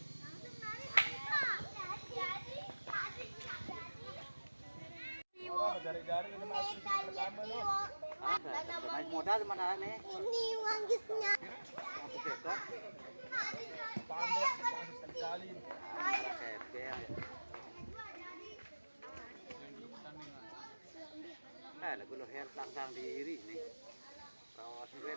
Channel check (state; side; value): inverted; both; correlation -1.00